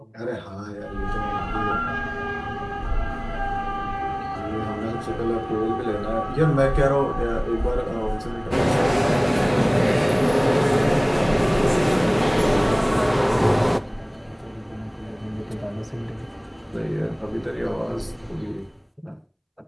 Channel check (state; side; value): identical; both; correlation 1.00